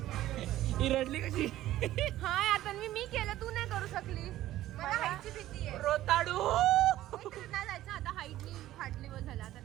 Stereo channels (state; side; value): quieter; left; 14.3 dB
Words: ही रडली कशी. हा आता मी केलं, तू नाही करू शकली. मला हाईटची भीती आहे. रोताडू. नाही जायचं आता, हाईटनी फाटली वर झाला आता.